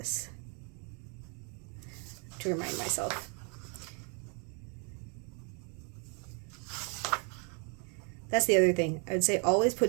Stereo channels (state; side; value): quieter; left; 37.0 dB